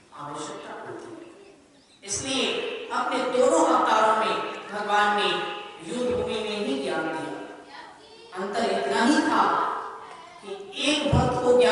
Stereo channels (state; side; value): identical; both; correlation 1.00